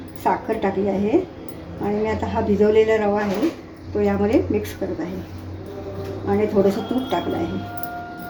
साखर टाकली आहे. आणि मी आता हा भिजवलेला रवा आहे तो यामध्ये मिक्स करत आहे आणि थोडंसं तूप टाकलं आहे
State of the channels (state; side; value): identical; both; correlation 1.00